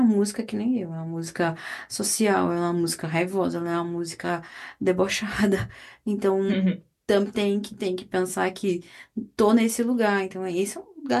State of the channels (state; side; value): identical; both; correlation 1.00